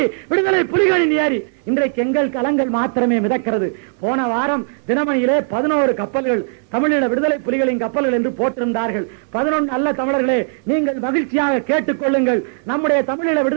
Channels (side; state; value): left; silent; 67 dB below the other